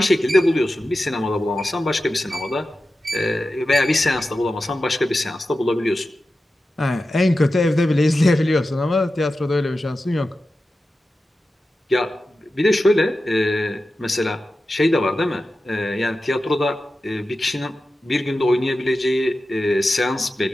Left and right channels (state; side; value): normal; both; correlation 0.93